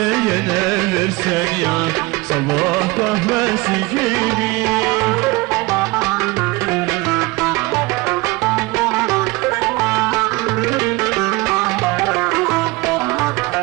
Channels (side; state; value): left; quieter; 23.1 dB